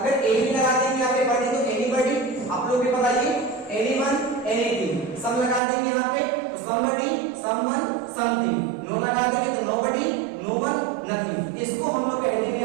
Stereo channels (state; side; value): drops out; left; at 5.6 s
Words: एनी लगा देंगे यहाँ पे बॉडी तो एनीबडी, आप लोग के बताइए। एनीवन, एनीथिंग, सम लगा देंगे यहाँ पे तो समबडी, समवन, समथिंग, नो लगा देंगे तो नोबडी, नोवन, नथिंग। इसको हम लोग कहते